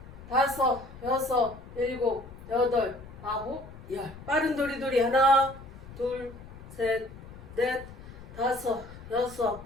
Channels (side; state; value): left; noise; rumble, 16 dB below the sound